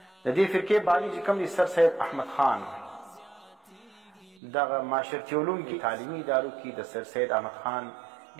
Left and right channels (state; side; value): drops out; left; at 4.4 s